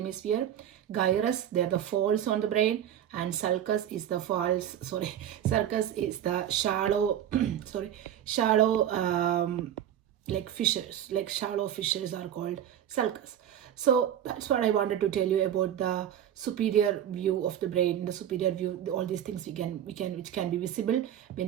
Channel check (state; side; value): quieter; left; 10.5 dB